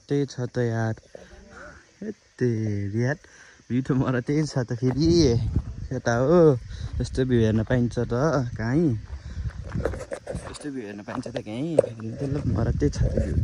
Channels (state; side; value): identical; both; correlation 1.00